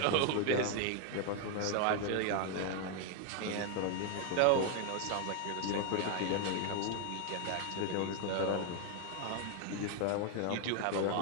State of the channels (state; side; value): different; both; correlation 0.01